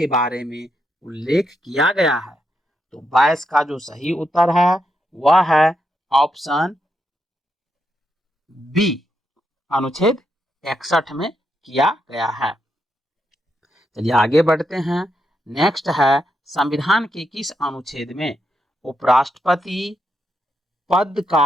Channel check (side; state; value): both; normal; correlation 0.82